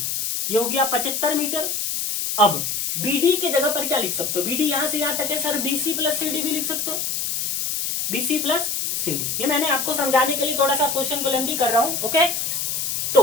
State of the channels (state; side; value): noise; left; hiss, 1 dB below the sound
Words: ये हो गया 75 मीटर। अब BD के जगह पर क्या लिख सकते हो, BD यहां से यहां तक है सर, BC प्लस CD भी लिख सकते हो, BC प्लस CD। ये मैंने आपको समझाने के लिए थोड़ा सा क्वेश्चन को लेंदी कर रहा हूं। ओके